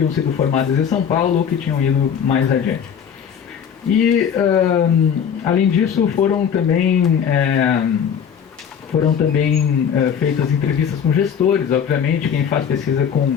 sido formadas em São Paulo ou que tinham ido mais adiante. E, além disso, foram também feitas entrevistas com gestores, obviamente, quem faz pesquisa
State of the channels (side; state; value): right; quieter; 7.8 dB